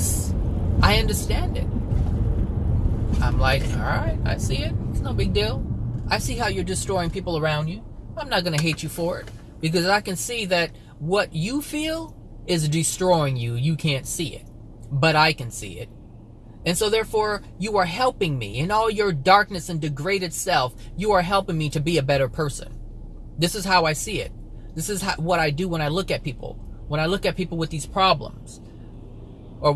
I understand it. I'm like, all right, I see it. It's no big deal. I see how you're destroying people around you. I'm not going to hate you for it because I can see that what you feel is destroying you. You can't see it, but I can see it. And so therefore, you are helping me in all your darkness and degraded self. You are helping me to be a better person. This is how I see it. This is what I do when I look at people. When I look at people with these problems, or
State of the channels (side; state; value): both; identical; correlation 1.00